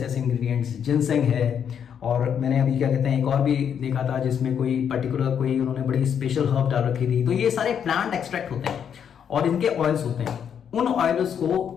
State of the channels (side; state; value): right; quieter; 8.1 dB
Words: ऐसे इंग्रेडिएंट्स। जिनसेंग है और मैंने अभी क्या कहते हैं एक और भी देखा था जिसमें कोई पर्टिकुलर कोई उन्होंने बड़ी स्पेशल हर्ब डाल रखी थी। तो ये सारे प्लांट एक्सट्रैक्ट होते हैं और इनके ऑयल्स होते हैं। उन ऑयल्स को